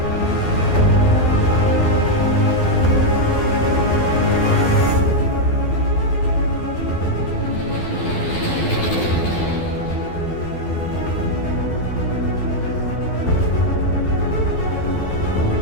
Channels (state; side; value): late; right; 12 ms